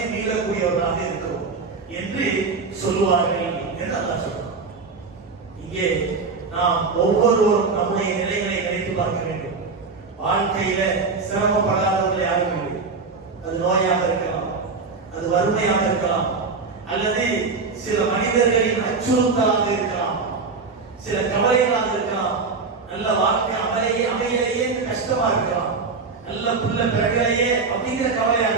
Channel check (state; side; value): quieter; left; 4.5 dB